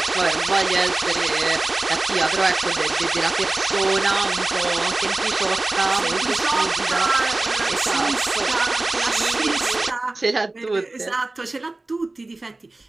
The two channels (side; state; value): left; quieter; 3.0 dB